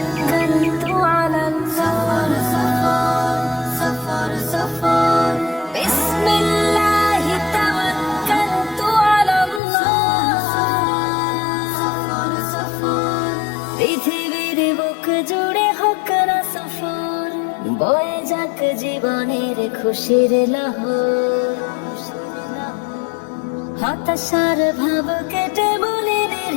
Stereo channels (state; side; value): drops out; right; at 9.6 s